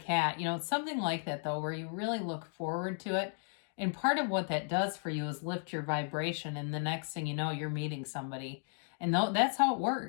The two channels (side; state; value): right; silent; 55 dB below the other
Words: It's something like that though, where you really look forward to it. And part of what that does for you is lift your vibration, and the next thing you know, you're meeting somebody. And that's how it